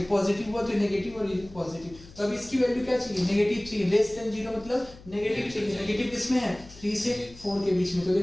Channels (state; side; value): noise; left; hum, 20 dB below the sound